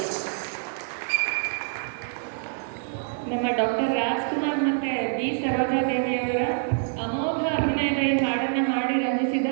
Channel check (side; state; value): left; silent; digital silence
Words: ನಮ್ಮ ಡಾಕ್ಟರ್ ರಾಜ್ಕುಮಾರ್ ಮತ್ತೆ ಬಿ ಸರೋಜಾದೇವಿಯವರ ಅಮೋಘ ಅಭಿನಯದ ಈ ಹಾಡನ್ನು ಹಾಡಿ ರಂಜಿಸಿದ